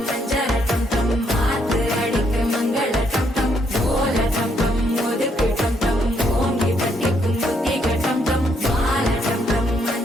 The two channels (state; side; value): normal; both; correlation 0.73